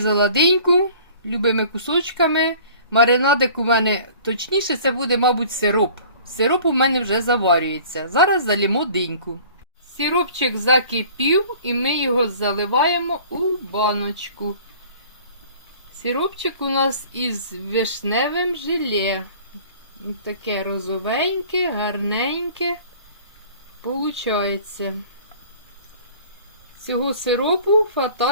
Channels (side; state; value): both; inverted; correlation -0.48